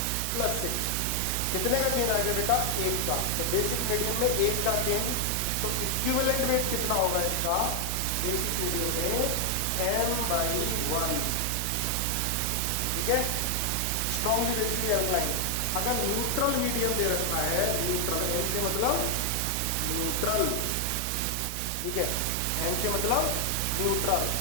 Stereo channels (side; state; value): both; different; correlation 0.00